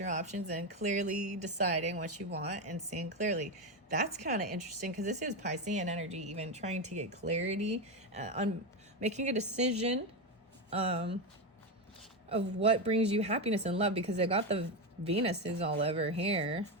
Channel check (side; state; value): both; normal; correlation 0.12